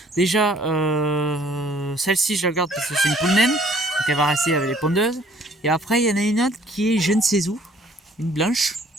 Déjà celle-ci je la garde parce que c'est une poule naine. Donc elle va rester avec les pondeuses. Et après il y en a une autre qui est je ne sais où. Une blanche.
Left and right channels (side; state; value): both; normal; correlation 0.59